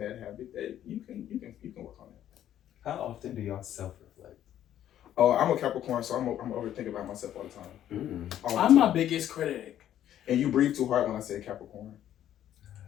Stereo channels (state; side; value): quieter; right; 11.3 dB